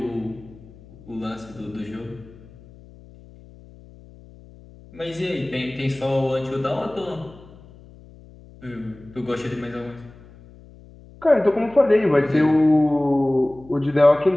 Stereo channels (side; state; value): left; noise; hum, 22 dB below the sound